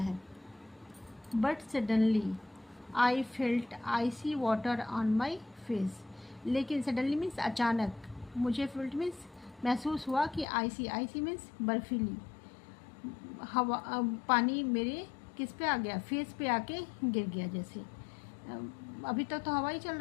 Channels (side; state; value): right; drops out; at 10.5 s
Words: But suddenly I felt icy water on my face, लेकिन सडनली मीन्स अचानक, मुझे फेल्ट मीन्स महसूस हुआ कि आइसी मीन्स बर्फीली हवा, पानी मेरे किस पे आ गया, फेस पे आके गिर गया। जैसे अभी तक तो हवा ही चल